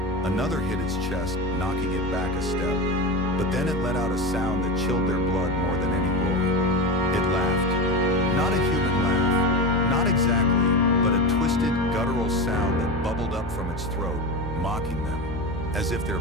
Another hit its chest, knocking it back a step. But then it let out a sound that chilled their blood more than any roar. It laughed. Not a human laugh, not exactly, but a twisted, guttural sound that bubbled up from its throat, mocking them. As if their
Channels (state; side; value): normal; both; correlation 0.22